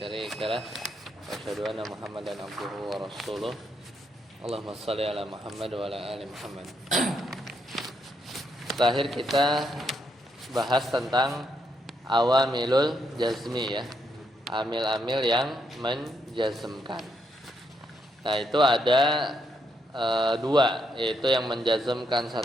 lah wa asyhadu anna Muhammadan abduhu wa rasuluh. Allahumma shalli ala Muhammad wa ala ali Muhammad. Terakhir kita bahas tentang awamilul jazmi ya. Amil-amil yang menjazmkan. Nah itu ada dua, yaitu yang menjazmkan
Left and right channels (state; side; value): normal; both; correlation 0.78